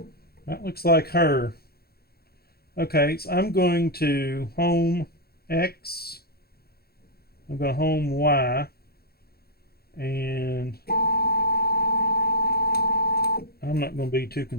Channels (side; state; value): right; late; 0.45 ms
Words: That looks like her. Okay, so I'm going to home X. I'm going to home Y. And I'm not going to be too